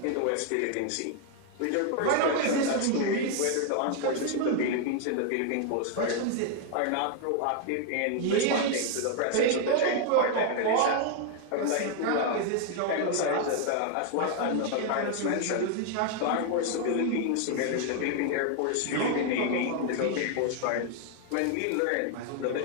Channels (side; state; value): both; different; correlation 0.00